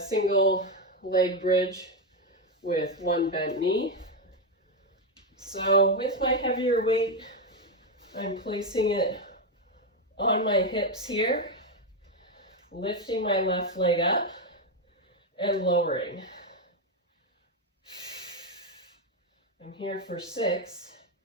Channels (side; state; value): both; normal; correlation 0.06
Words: leg bridge with 1 bent knee. So with my heavier weight, I'm placing it on my hips here, lifting my left leg up and lowering. I'm here for 6,